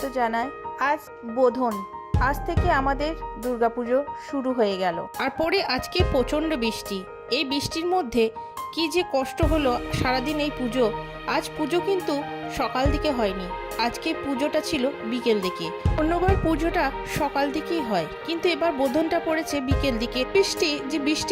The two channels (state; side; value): identical; both; correlation 1.00